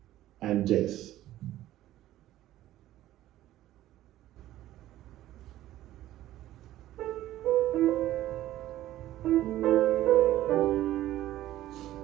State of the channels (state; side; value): quieter; left; 14.2 dB